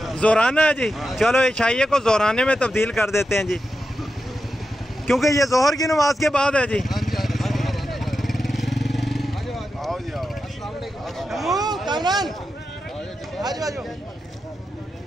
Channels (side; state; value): both; normal; correlation 0.89